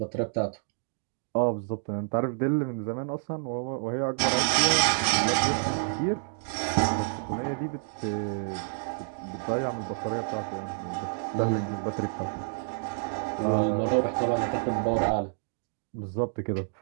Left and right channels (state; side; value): silent; left; digital silence